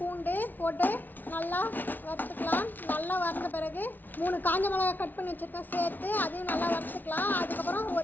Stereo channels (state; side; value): late; right; 0.086 ms